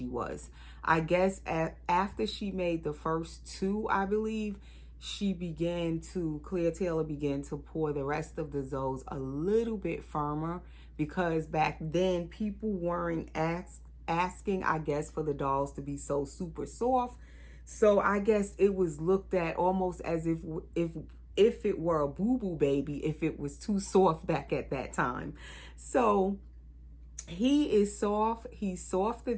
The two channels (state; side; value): identical; both; correlation 1.00